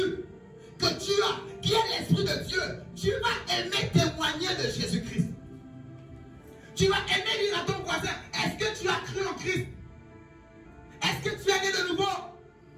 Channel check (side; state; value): both; identical; correlation 1.00